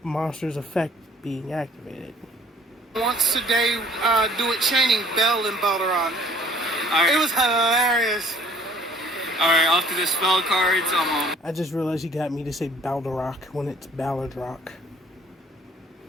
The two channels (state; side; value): normal; both; correlation 0.56